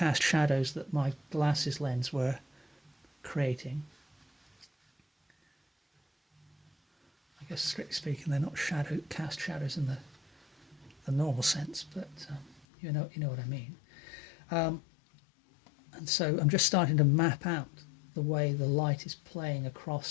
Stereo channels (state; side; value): drops out; right; at 12.7 s